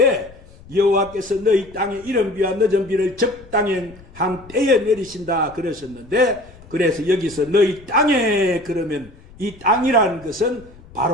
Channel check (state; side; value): noise; left; rumble, 22 dB below the sound